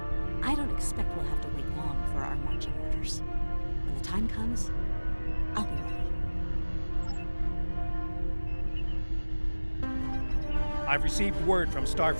I don't expect we'll have to wait long for our marching orders. When the time comes, I'll be ready. I've received word from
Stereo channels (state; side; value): inverted; both; correlation -1.00